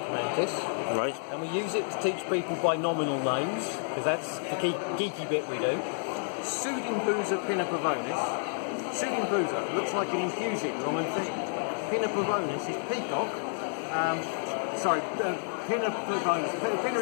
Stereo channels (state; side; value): silent; right; 58 dB below the other